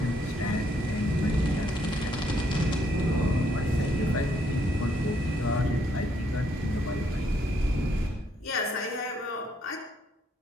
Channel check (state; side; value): normal; both; correlation 0.71